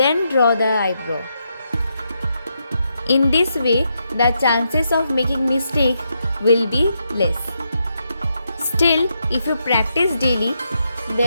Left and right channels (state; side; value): inverted; both; correlation -0.81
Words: draw the eyebrow. In this way, the chances of making mistake will be less. Still, if you practice daily,